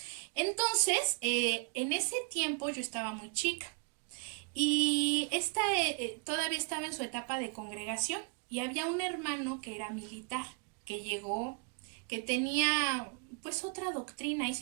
Entonces, en ese tiempo yo estaba muy chica y todavía estaba en su etapa de congregación y había un hermano que era militar, que llegó, que tenía pues otra doctrina y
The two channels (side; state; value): left; quieter; 35.6 dB